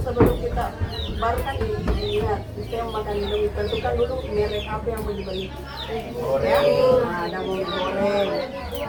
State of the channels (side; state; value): both; identical; correlation 1.00